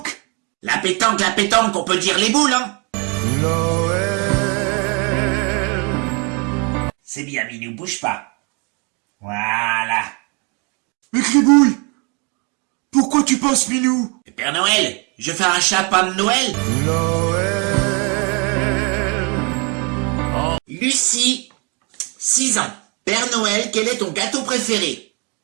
La pétanque, on peut dire les boules, hein? Noël. C'est bien, Minou, bouge pas. Voilà. Mais Gribouille, pourquoi tu passes Minou? Père Noël, je fais un chapin de Noël. Noël. Lucie, 6 ans. Père Noël, quel est ton gâteau préféré?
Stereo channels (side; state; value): left; quieter; 32.6 dB